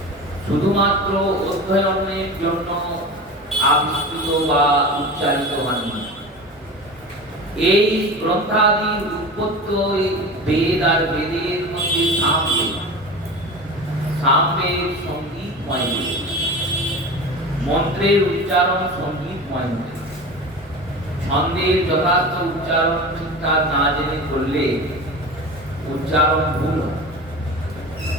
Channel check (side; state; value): both; normal; correlation 0.31